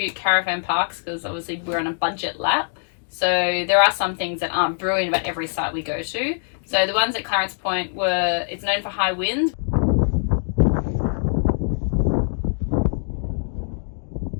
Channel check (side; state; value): right; silent; digital silence